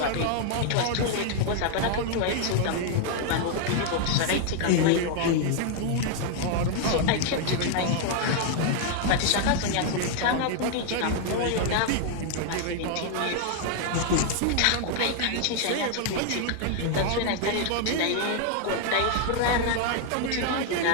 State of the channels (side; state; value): both; different; correlation 0.00